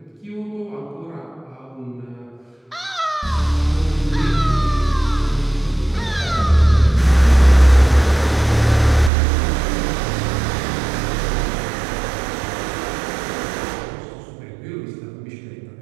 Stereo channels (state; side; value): drops out; left; at 9.1 s